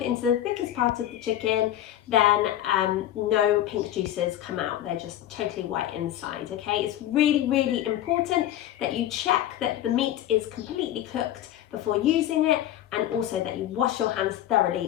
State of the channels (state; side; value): quieter; right; 12.4 dB